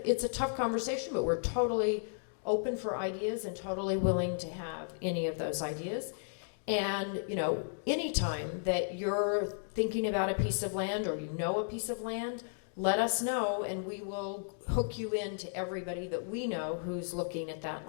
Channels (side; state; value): right; silent; digital silence